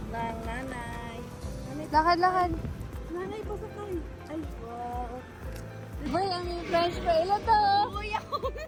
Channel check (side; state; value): both; identical; correlation 1.00